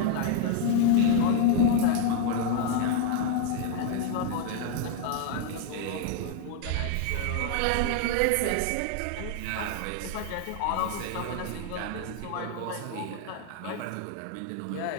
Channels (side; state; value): both; different; correlation 0.00